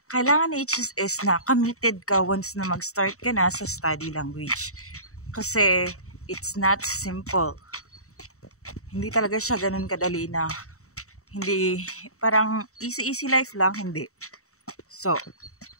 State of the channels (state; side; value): late; right; 0.64 ms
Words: Kailangan ni HSS na committed ka once na mag-start ka na sa study language. Kasi, it's not simple. Hindi talaga siya ganun kadali na, hindi, parang easy life lang, hindi. So,